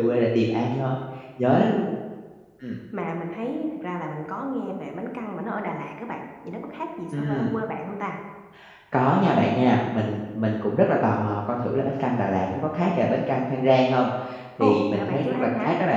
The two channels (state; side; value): identical; both; correlation 1.00